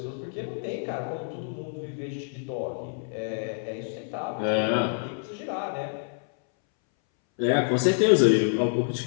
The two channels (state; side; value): silent; right; 60 dB below the other